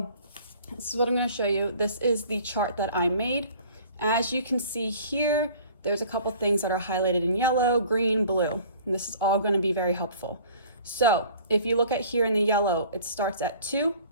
this is what I'm going to show you. This is the chart that I made. As you can see here, there's a couple things that are highlighted in yellow, green, blue, and this is all going to be very helpful. So if you look at here in the yellow, it starts at 2,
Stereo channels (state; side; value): inverted; both; correlation -0.49